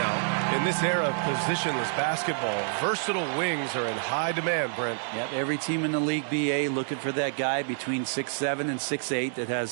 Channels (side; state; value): left; silent; digital silence